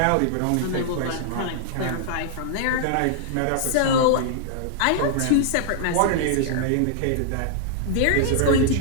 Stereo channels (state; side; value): different; both; correlation -0.01